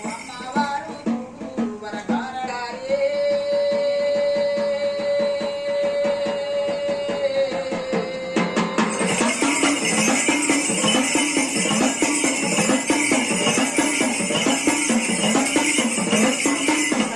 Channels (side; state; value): both; identical; correlation 1.00